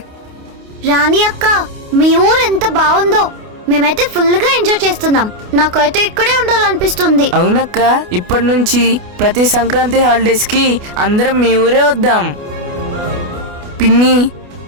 రాణి అక్క, మీ ఊరు ఎంత బాగుందో. మేమైతే ఫుల్ గా ఎంజాయ్ చేస్తున్నాం. నాకైతే ఇక్కడే ఉండాలనిపిస్తుంది. అవునక్క, ఇప్పటి నుంచి ప్రతి సంక్రాంతి హాలిడేస్ కి అందరం మీ ఊరే వద్దాం. పిన్ని,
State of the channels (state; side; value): late; left; 28 ms